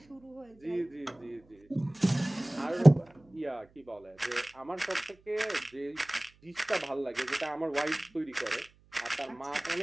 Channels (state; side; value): noise; right; hum, 30 dB below the sound